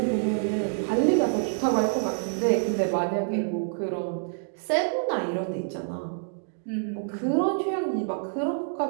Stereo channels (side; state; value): left; silent; digital silence